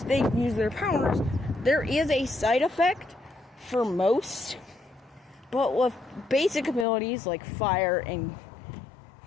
they use their powers, there is a side effect for most, but with basic abilities like fire and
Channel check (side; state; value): right; drops out; at 6.9 s